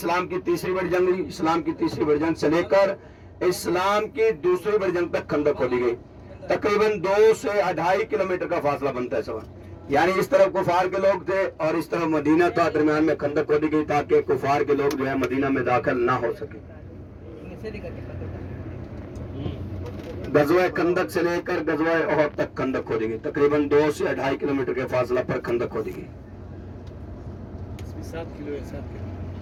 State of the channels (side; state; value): both; identical; correlation 1.00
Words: की तीसरी बड़ी जंग हुई, इस्लाम की तीसरी बड़ी जंग से लेकर इस्लाम की दूसरी बड़ी जंग तक खंदक खोदी गई। तकरीबन 2 से 2.5 किलोमीटर का फासला बनता है सवाल। यानी इस तरफ कुफार के लोग थे और इस तरफ मदीना था, दरमियान में खंदक खोदी गई ताकि कुफार के लोग जो है मदीना में दाखिल ना हो सके। गज़वा खंदक से लेकर गज़वा ओहद तक खंदक खोदी गई। तकरीबन 2 से 2.5 किलोमीटर के फासला पर खंदक खोदी गई। 7 किलो है, 7 किलो।